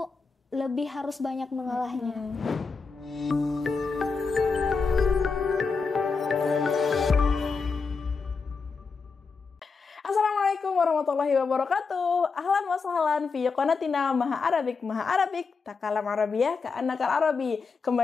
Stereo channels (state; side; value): quieter; right; 4.8 dB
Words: lebih harus banyak mengalahnya. Assalamualaikum warahmatullahi wabarakatuh. Ahlan wa sahlan fi qanatina Maha Arabik takalam Arabiyah ka'annakal Arabi.